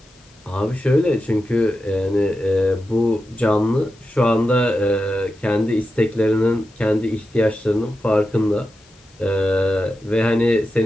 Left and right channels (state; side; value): noise; left; hiss, 30 dB below the sound